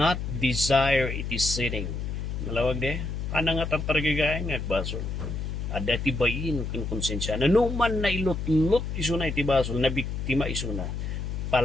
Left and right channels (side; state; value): left; noise; hum, 4 dB below the sound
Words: desire iti sinning. Malawag de, ana nga tartargigay nga basol. Ada ti bayin ken konsensya na numan na ilot-lot iso na iti basol na biktima iso na